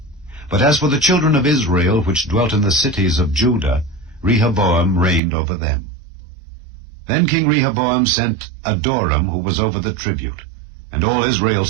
But as for the children of Israel which dwelt in the cities of Judah, Rehoboam reigned over them. Then King Rehoboam sent Adoram, who was over the tribute, and all Israel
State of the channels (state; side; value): drops out; left; at 5.2 s